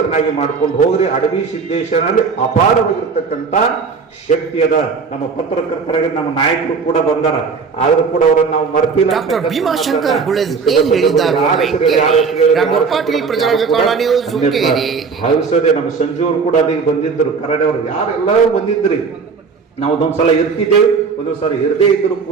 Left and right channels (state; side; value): quieter; left; 5.2 dB